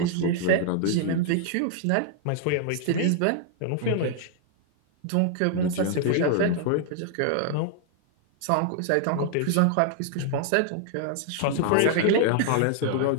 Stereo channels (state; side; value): different; both; correlation 0.00